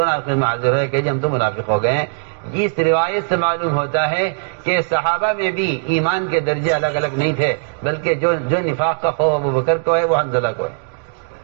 آخر میں حاضر ہوئے کہ جی ہم تو منافق ہو گئے ہیں. اس روایت سے معلوم ہوتا ہے کہ صحابہ میں بھی ایمان کے درجے الگ الگ نہیں تھے، بلکہ جو نفاق کا خوف ابو بکر کو ہے وہ حنظلہ کو ہے.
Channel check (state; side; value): silent; left; digital silence